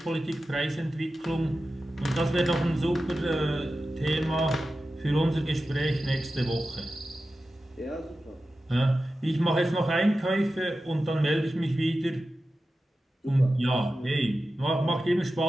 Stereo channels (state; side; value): normal; both; correlation 0.93